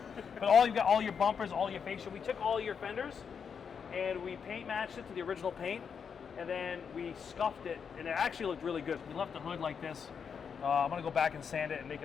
But you got all your bumpers, all your fascia. We took all your fenders, and we paint matched it to the original paint, and then we scuffed it, and it actually looked really good. We left the hood like this. I'm gonna go back and sand it and make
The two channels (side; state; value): right; quieter; 6.7 dB